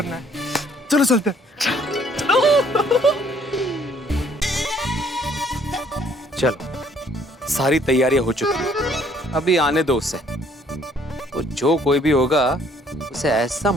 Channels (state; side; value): normal; both; correlation 0.62